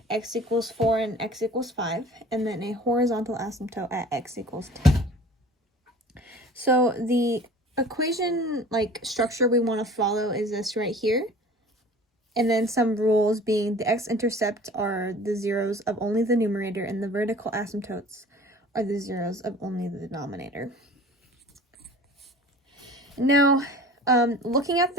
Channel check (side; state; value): both; normal; correlation 0.44